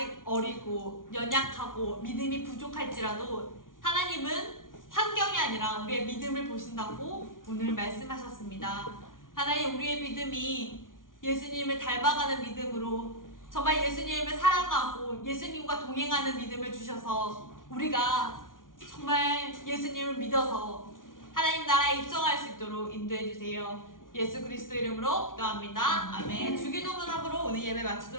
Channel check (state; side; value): late; right; 0.89 ms